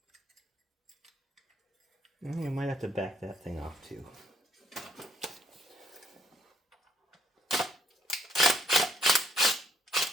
You might have to back that thing off too.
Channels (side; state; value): both; normal; correlation 0.69